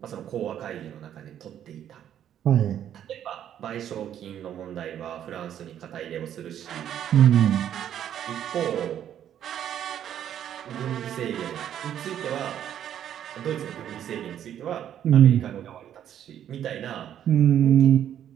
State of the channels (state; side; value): quieter; left; 10.3 dB